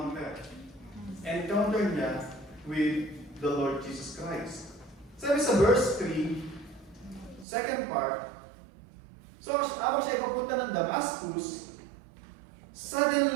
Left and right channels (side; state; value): left; drops out; at 7.5 s